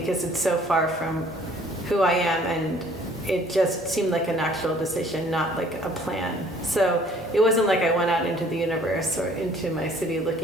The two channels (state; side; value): normal; both; correlation 0.56